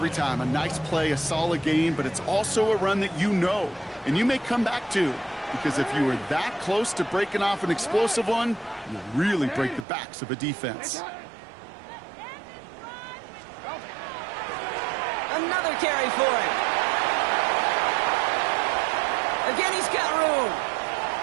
time. A nice play, a solid game, but it's also a run that you know and you may come back to. Because if you were that close to breaking off an explosive one, you really break the backs of a defense. Another carry for him. Again, he's got room.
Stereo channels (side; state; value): left; drops out; at 9.9 s